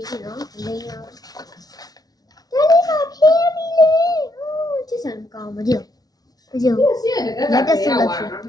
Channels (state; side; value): late; right; 0.19 ms